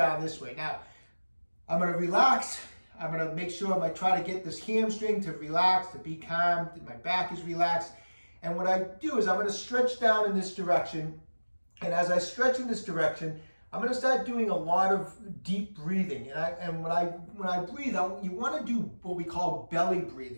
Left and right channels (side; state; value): both; inverted; correlation -1.00